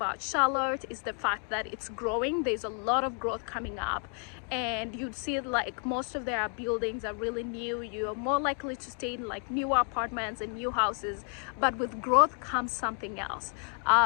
Charlotte is the fact that it's growing. There's a lot of growth coming up, and you'd see like most of their buildings are really new. You're more likely to stay in like newer apartments and new houses, but with growth comes something else.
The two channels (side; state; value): right; quieter; 38.3 dB